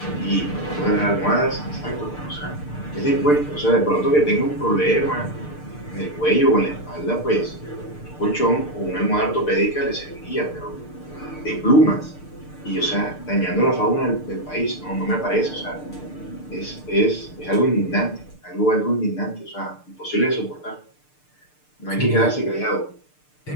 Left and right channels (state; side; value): late; right; 6.7 ms